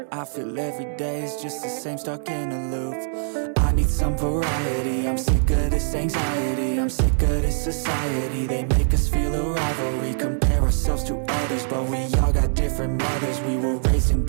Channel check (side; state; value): left; silent; digital silence